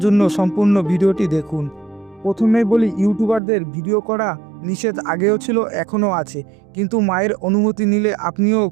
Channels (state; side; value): drops out; left; at 3.4 s